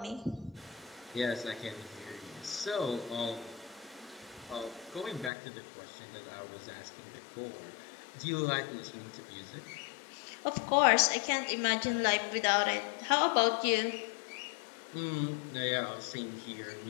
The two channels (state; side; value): drops out; right; at 5.3 s